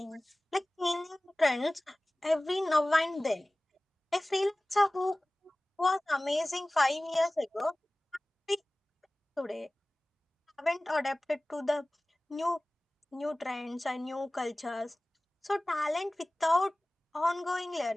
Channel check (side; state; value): both; normal; correlation 0.98